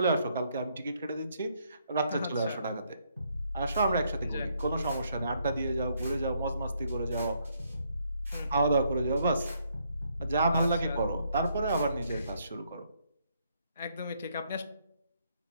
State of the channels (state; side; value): inverted; both; correlation -0.73